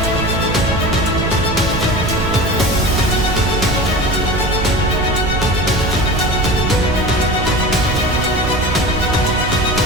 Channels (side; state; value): right; noise; rumble, 7 dB below the sound